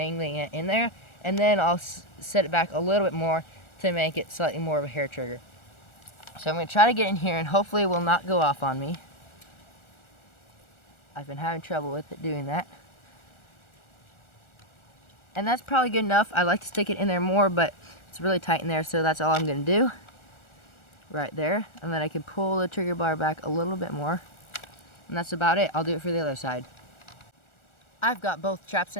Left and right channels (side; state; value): right; late; 1.4 ms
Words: it in there. And then I'll set it back a little bit more to make it slightly more of a hair trigger. So I'm going to try to get in here and hopefully it will not go off on me. I've been having trouble with it doing that. And that's probably good enough. I like to stick it in there more, but it's really tight in there, so that's all I'm going to do. Right there. And then I can pull the trigger bar back a little bit more. And that's about it. I'll do it for the other side. I've got both traps